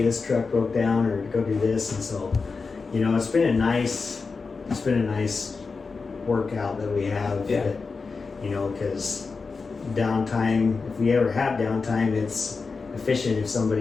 this truck broke down, or go do this. And so, you know, it's been a nice workout that we have. Yeah. That, you know, because downtime, if we ever have downtime, it's efficient if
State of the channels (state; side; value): quieter; right; 4.5 dB